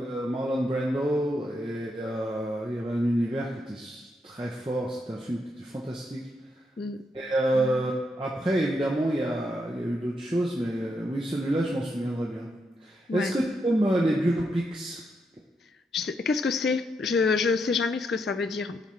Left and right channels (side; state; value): both; normal; correlation 0.80